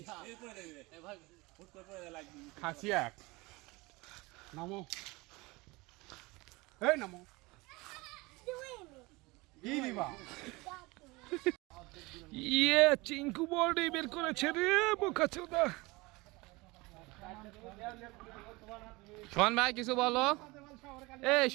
খাসি এক নামো, এই নামো। কি দিবা? ইয়ে চিঙ্কু বডি বের করেছে রে বোকাচোদা। সোহান ভাই কিছু বলো। এই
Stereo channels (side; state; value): left; quieter; 23.4 dB